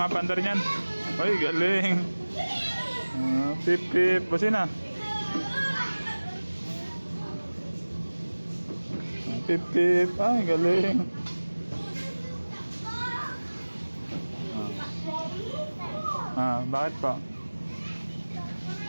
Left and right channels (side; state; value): both; inverted; correlation -1.00